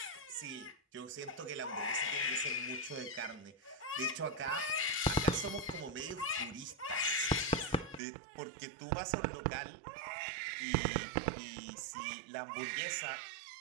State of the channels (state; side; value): drops out; left; at 8.0 s